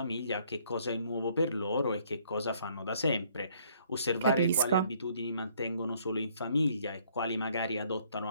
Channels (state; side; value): inverted; both; correlation -0.64